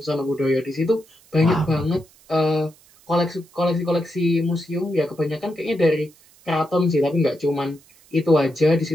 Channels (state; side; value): noise; right; hiss, 28 dB below the sound